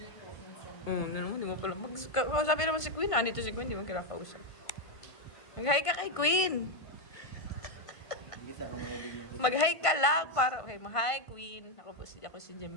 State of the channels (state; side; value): late; right; 1.5 ms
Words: Hindi mo pala. Sabi naman si Queen, nandito si Queen, di mo kinakausap. Mag-hi ka kay Queen. Hindi sa akong mahilig ng Mag-hi ka lang para... Okay, hi Queen. Ako si